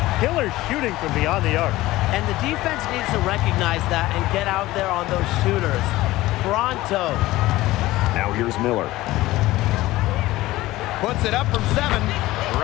Killer shooting from beyond the arc. And the defense needs to recognize that and get out there on those shooters. Pronto. Now here's Miller. Puts it up from 7.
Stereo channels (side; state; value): right; quieter; 17.6 dB